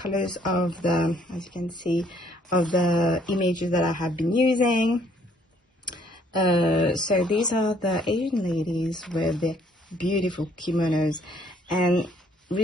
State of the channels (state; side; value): normal; both; correlation 0.64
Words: of the, as you can see, of the images that I have been using. So these are the Asian ladies with their beautiful kimonos, and